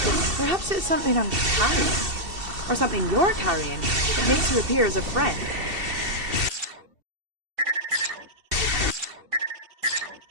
Perhaps it's something I'm carrying. Or something you're carrying that makes you appear as a friend.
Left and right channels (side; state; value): left; late; 2.7 ms